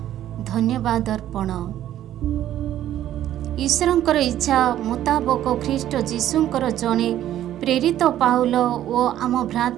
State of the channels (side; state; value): left; quieter; 12.2 dB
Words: धन्यवाद अर्पण। ईश्वरंकर इच्छा मुताबक ख्रीष्ट जीशुंकर जणे प्रेरित पाउल ओ आम